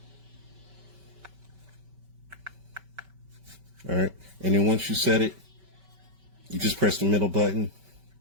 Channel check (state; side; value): late; left; 5.2 ms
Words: All right, and then once you set it, you just press the middle button.